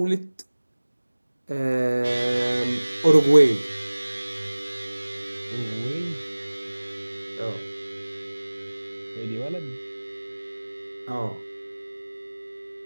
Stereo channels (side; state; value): both; inverted; correlation -1.00